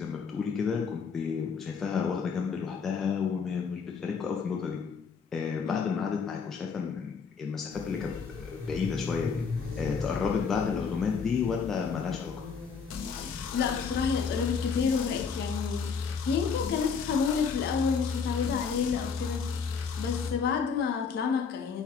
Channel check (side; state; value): right; quieter; 5.8 dB